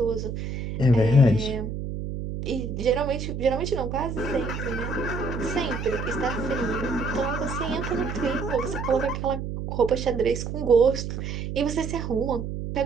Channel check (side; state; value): right; noise; hum, 5 dB below the sound